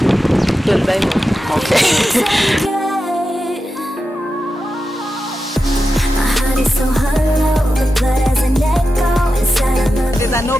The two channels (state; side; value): normal; both; correlation 0.90